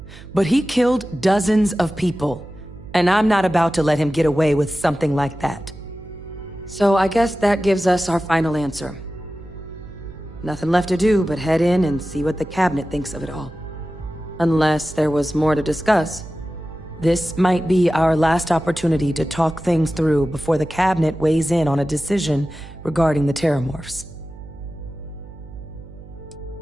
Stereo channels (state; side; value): noise; right; hum, 17 dB below the sound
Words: But he killed dozens of people, and I'm not about to let him get away with something like that. So I guess that gives us our final answer. Nothing left to do but head in and see what the cabinet thinks of it all. Unless there was more to discuss. This might be our last opportunity to talk things through before the cabinet weighs in on a decision regarding the Terramorphs.